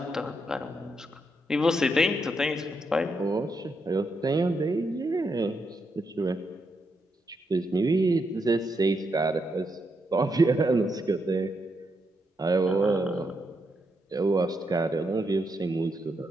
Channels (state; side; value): normal; both; correlation 0.81